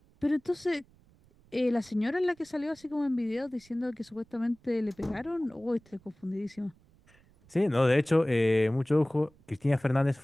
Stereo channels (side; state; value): right; noise; rumble, 30 dB below the sound